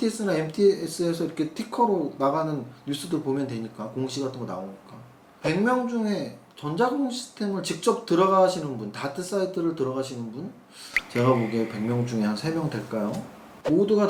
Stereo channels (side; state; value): both; identical; correlation 1.00